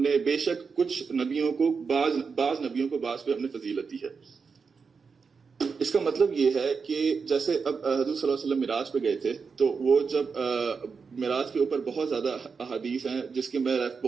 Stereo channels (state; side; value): quieter; left; 5.3 dB